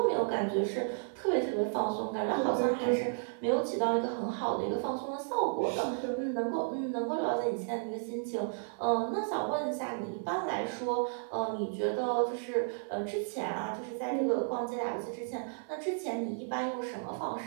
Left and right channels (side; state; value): left; silent; 56 dB below the other